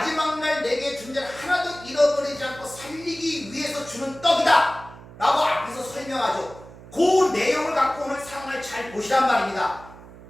날 내게 준 자를 하나도 잃어버리지 않고 살리기 위해서 주는 떡이다 라고 앞에서 설명하죠. 그 내용을 갖고 오늘 상황을 잘 보시란 말입니다.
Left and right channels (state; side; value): noise; right; hum, 18 dB below the sound